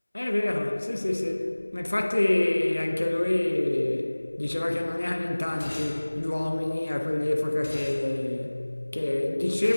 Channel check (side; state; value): both; inverted; correlation -1.00